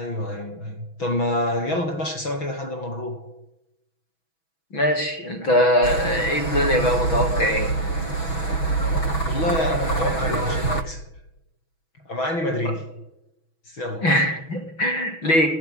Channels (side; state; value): right; late; 6.1 ms